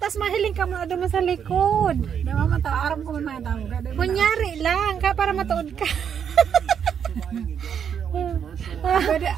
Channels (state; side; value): quieter; left; 7.9 dB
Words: mahiling ka mo doon sa likod. Dawa man ta, aram ko man tawag. Kunyari lang, para matuod ka.